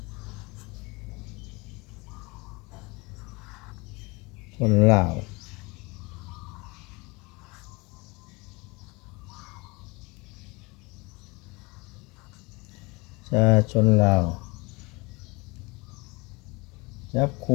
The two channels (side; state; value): right; quieter; 26.1 dB